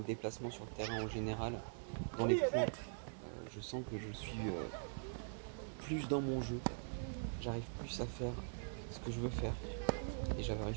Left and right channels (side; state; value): left; silent; digital silence